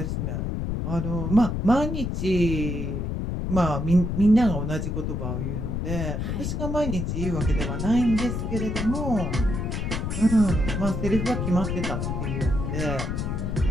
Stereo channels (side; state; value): left; noise; rumble, 2 dB below the sound